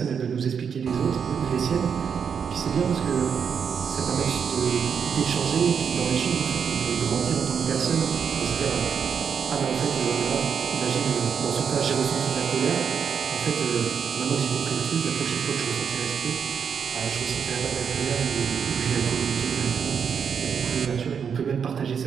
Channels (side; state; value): left; quieter; 7.0 dB